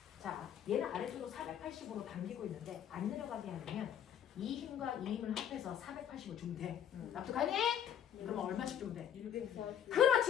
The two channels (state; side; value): quieter; right; 9.5 dB